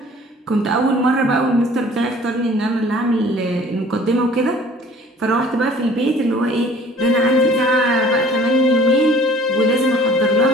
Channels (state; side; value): normal; both; correlation 0.51